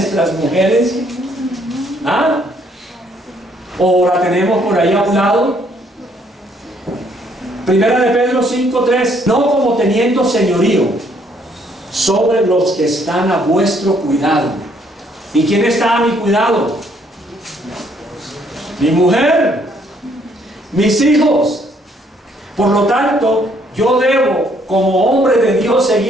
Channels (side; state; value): both; normal; correlation 0.67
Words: mujeres? ¿Ah? ¿O la tenemos por ahí a un lado? Primera de Pedro 5:3. No como teniendo señorío sobre los que están a vuestro cuidado. ¿Y quién está a mi cuidado? Mi mujer, mis hijos. Por lo tanto, yo debo, como hombre de Dios,